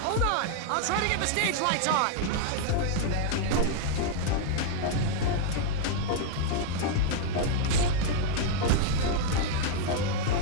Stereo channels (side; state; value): both; different; correlation -0.01